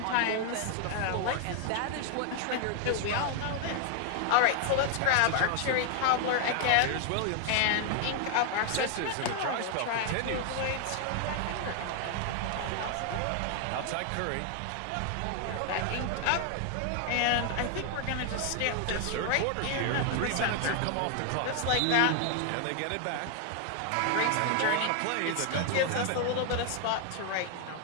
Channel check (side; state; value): both; different; correlation 0.00